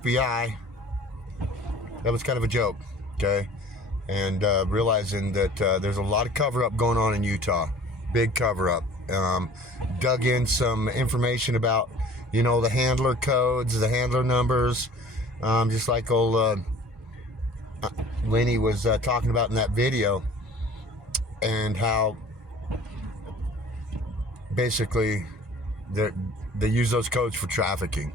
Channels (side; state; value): both; normal; correlation 0.47